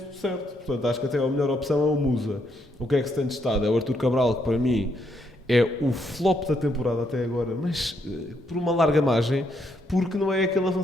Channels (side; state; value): both; normal; correlation 0.75